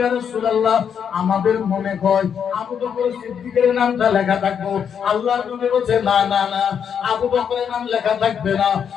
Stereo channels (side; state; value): right; quieter; 7.7 dB